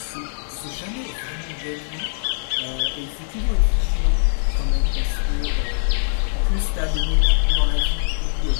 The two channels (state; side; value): silent; right; 58 dB below the other